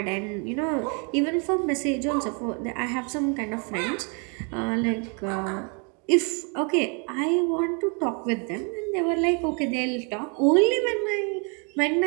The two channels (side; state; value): left; quieter; 36.6 dB